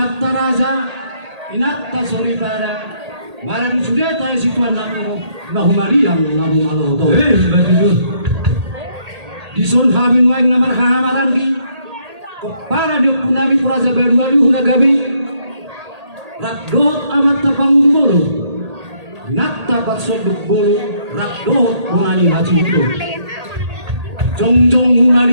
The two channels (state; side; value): late; left; 1.8 ms